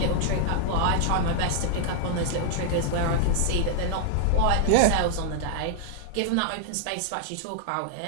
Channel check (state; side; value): different; both; correlation 0.00